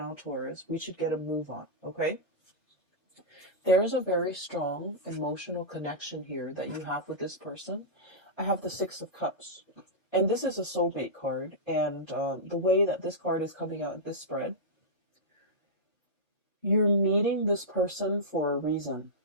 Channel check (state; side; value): normal; both; correlation -0.11